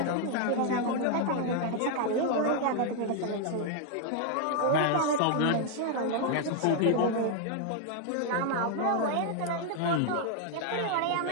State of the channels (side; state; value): both; different; correlation 0.00